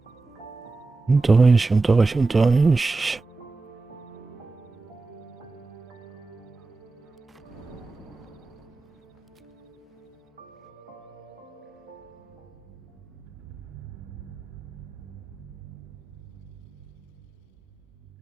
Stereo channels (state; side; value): quieter; left; 3.6 dB